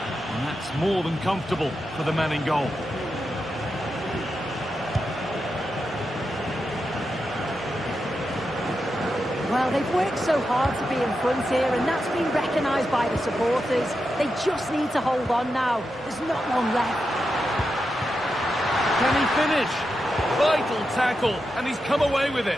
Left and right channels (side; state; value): both; normal; correlation 0.88